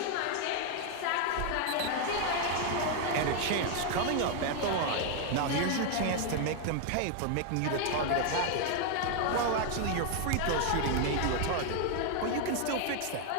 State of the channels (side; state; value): both; different; correlation 0.00